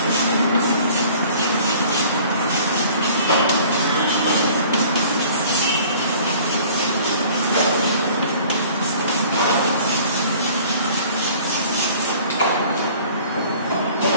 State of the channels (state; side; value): inverted; both; correlation -0.50